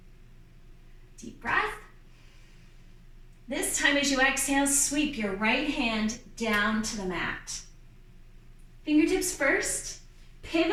Deep breath. This time as you exhale, sweep your right hand down to the mat. Fingertips first.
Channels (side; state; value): both; identical; correlation 1.00